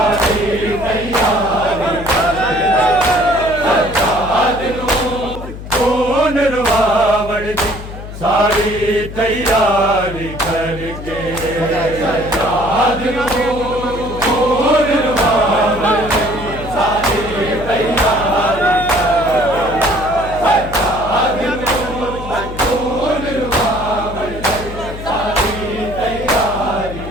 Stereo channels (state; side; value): noise; left; hum, 11 dB below the sound